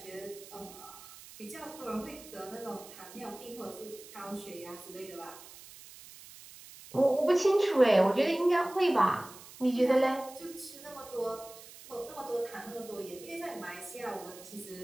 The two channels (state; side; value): noise; right; hiss, 18 dB below the sound